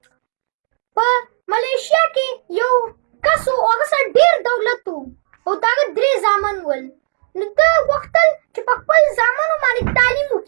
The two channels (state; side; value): silent; left; digital silence